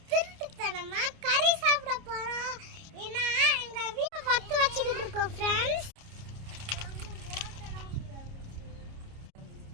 திருட்டுத்தனமா கறி சாப்பிட போறோம். ஏன்னா எங்க வீட்டை பத்து வச்சுக்கிட்டு இருக்கோம் ஃப்ரெண்ட்ஸ்.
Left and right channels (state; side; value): late; left; 29 ms